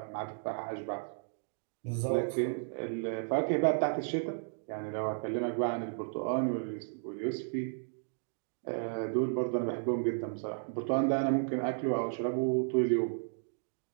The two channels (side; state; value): left; silent; digital silence